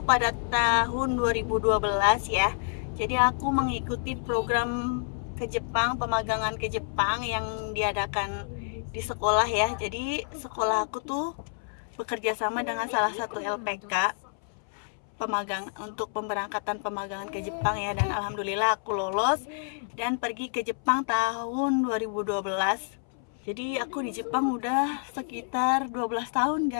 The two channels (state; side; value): silent; right; 59 dB below the other